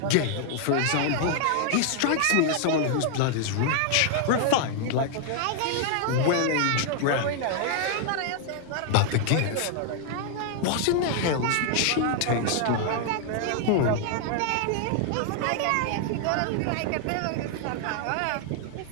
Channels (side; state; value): both; different; correlation 0.00